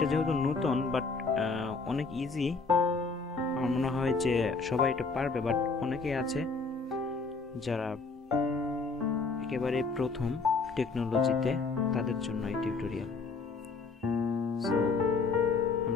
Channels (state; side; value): quieter; right; 4.3 dB